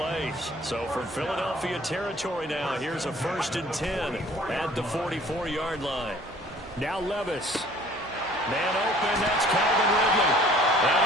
So from Philadelphia territory now, here's a 1st and 10 at the 44-yard line. Now Levis. Man open. That's Calvin Ridley. And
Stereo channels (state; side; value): noise; right; hum, 21 dB below the sound